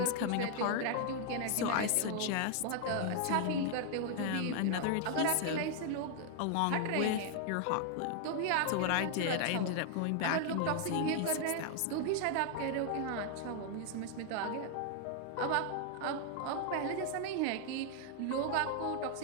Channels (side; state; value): both; different; correlation 0.00